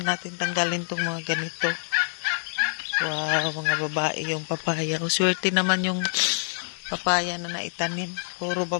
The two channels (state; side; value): silent; right; 61 dB below the other